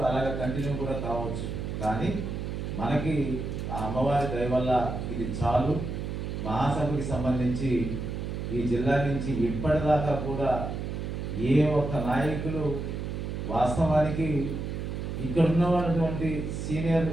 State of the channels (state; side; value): noise; right; hum, 4 dB below the sound